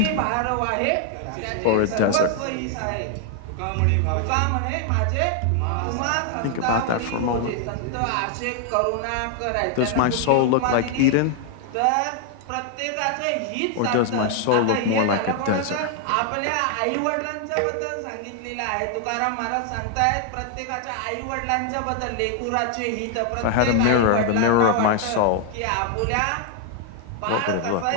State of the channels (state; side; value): different; both; correlation 0.00